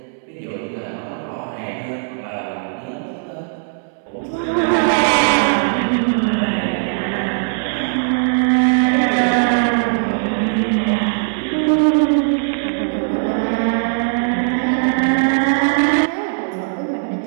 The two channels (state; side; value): silent; left; 67 dB below the other